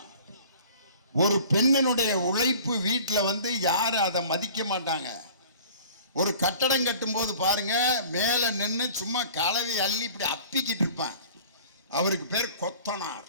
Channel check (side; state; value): both; inverted; correlation -0.47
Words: ஒரு பெண்ணினுடைய உழைப்பு வீட்டில் வந்து யாரும் அதை மதிக்க மாட்டாங்க. ஒரு கட்டடம் கட்டும் போது பாருங்க, மேலே நின்று சும்மா கலவை அள்ளி இப்படி அப்பிக்கிட்டு இருப்பான். அவருக்கு பேர் கொத்தனார்.